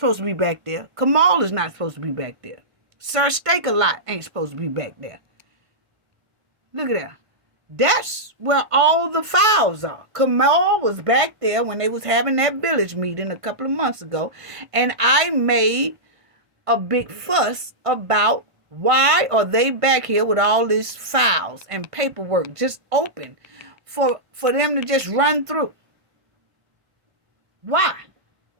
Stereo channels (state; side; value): late; left; 1.5 ms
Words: to be back there. Kamal is not supposed to be back there. Sir Steak-A-Lot ain't supposed to be back there. Look at that. That's where all the files are. Kamal was back there when they was having that village meeting a couple of months ago, and I made a big fuss about why are they back here with all these files and paperwork just open for them to just run through. Why?